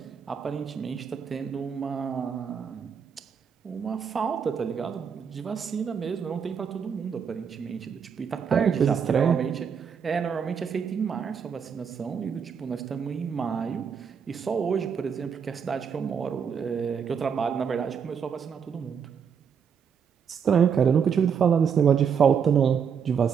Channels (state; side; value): quieter; left; 6.9 dB